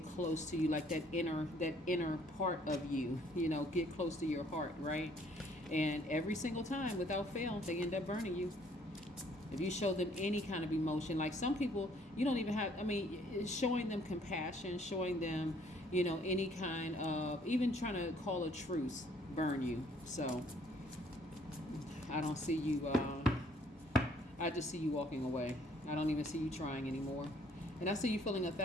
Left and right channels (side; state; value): both; normal; correlation 0.61